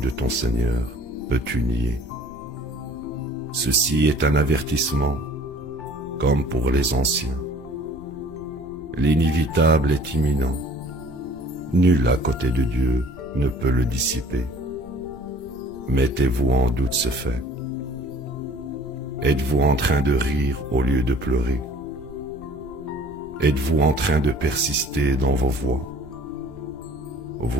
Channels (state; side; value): noise; left; rumble, 19 dB below the sound